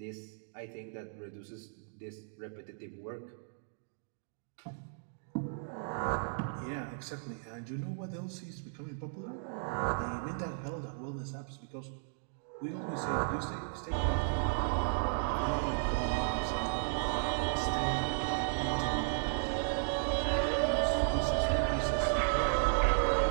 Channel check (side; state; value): left; silent; digital silence